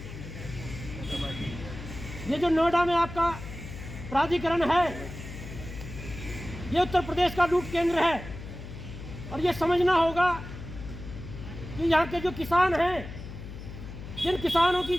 ये जो नोएडा में आपका प्राधिकरण है, ये उत्तर प्रदेश का लूट केंद्र है और ये समझना होगा कि यहाँ के जो किसान हैं, जिन किसानों की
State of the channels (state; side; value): noise; left; hum, 11 dB below the sound